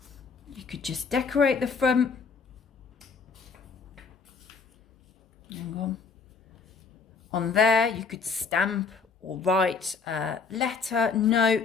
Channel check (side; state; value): right; quieter; 5.2 dB